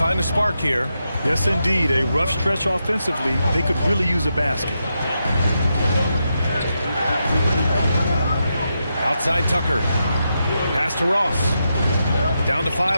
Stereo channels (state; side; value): inverted; both; correlation -0.85